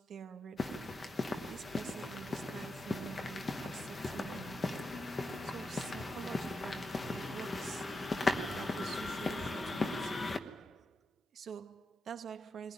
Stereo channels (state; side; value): normal; both; correlation 0.87